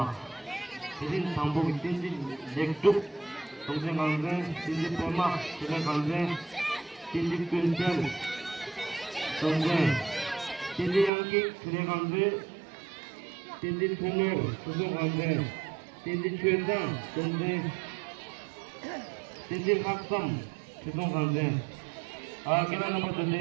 idin tambo tinji lektuk tongse kalde tinji pema tinji kalde tinji pintel tongse tinji yanki tinji kalde tinji tungo tuso kalde tinji chueda tongse tinji haksam tuso kalde kira nomor tadi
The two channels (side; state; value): left; drops out; at 11.1 s